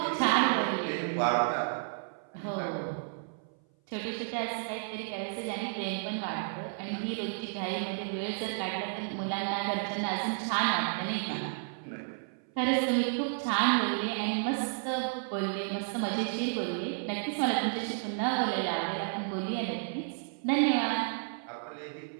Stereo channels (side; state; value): left; silent; 56 dB below the other